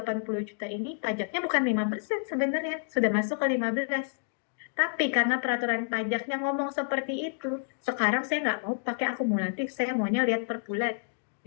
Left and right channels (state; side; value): silent; right; digital silence